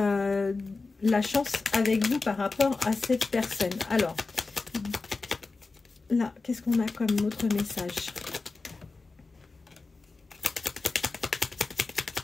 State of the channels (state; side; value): quieter; right; 3.8 dB